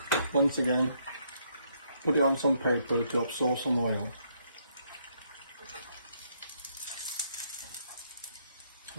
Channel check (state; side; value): inverted; both; correlation -0.72